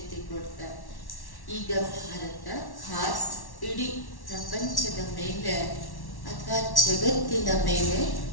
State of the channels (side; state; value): right; late; 1.1 ms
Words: ಕೊಡ್ತಾರೆ. ಈಗ ಭಾರತ ಖಾಸ್ ಇಡೀ ಪ್ರಪಂಚದ ಮೇಲೆ ಅಥವಾ ಜಗತ್ತಿನ ಮೇಲೆ